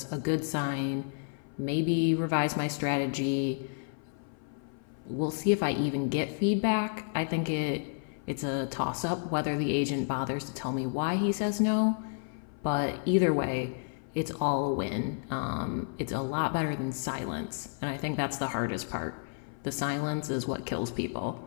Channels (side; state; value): right; silent; 56 dB below the other